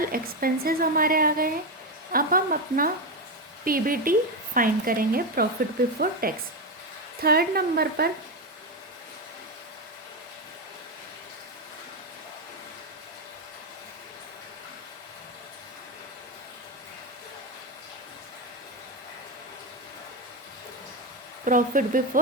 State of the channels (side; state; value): both; normal; correlation 0.11